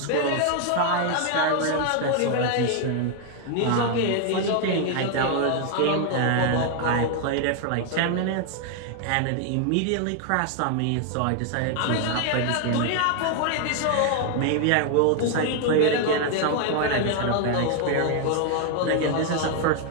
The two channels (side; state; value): both; different; correlation 0.00